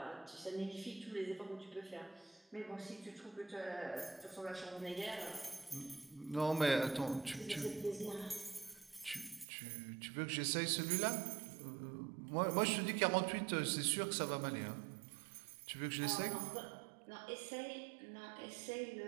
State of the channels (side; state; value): left; drops out; at 9.5 s